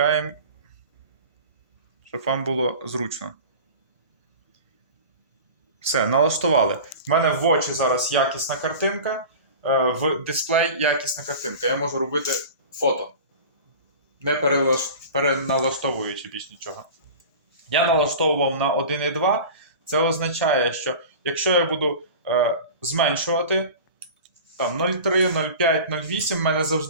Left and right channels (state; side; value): inverted; both; correlation -0.35